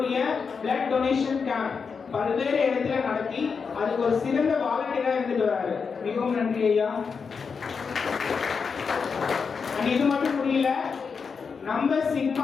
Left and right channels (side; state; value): right; quieter; 5.6 dB